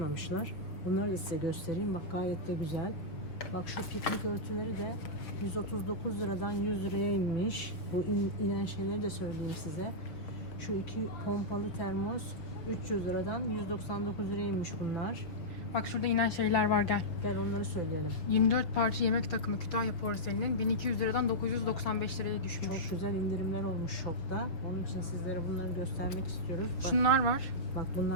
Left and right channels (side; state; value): right; late; 6.0 ms